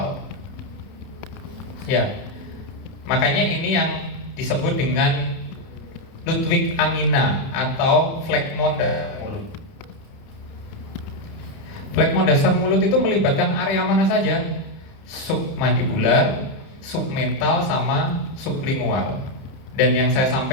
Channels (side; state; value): right; late; 31 ms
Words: Ya, makanya ini yang disebut dengan Ludwig angina atau phlegmon dasar mulut. Phlegmon dasar mulut itu melibatkan area mana saja? Submandibular, submental, sama sublingual. Dan yang saya